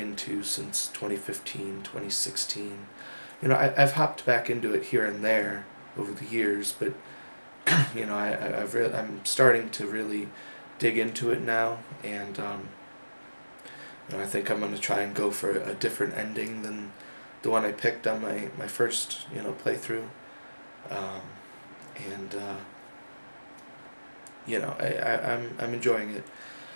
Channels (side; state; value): both; inverted; correlation -1.00